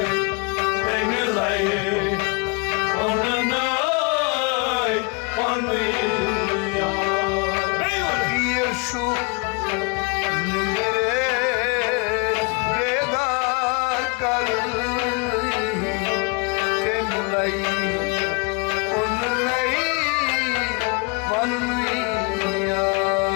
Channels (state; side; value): quieter; right; 31.6 dB